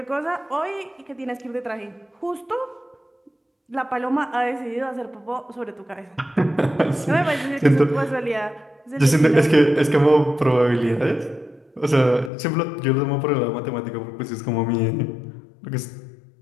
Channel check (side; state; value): right; drops out; at 12.3 s